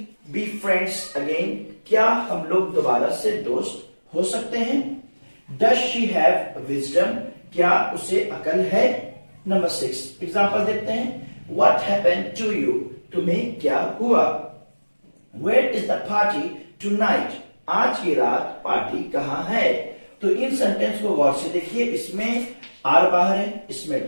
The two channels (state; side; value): inverted; both; correlation -1.00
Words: be friends again? क्या हम लोग दोबारा से दोस्त हो सकते हैं? Does she have wisdom? क्या उसे अकल है? नंबर 6 एग्जांपल देखते हैं। What happened to you? तुम्हें क्या हुआ? Where is the party tonight? आज की रात पार्टी कहां है? तो इन सेंटेंस को गौर से देखिए। इसमें आर बाहर है,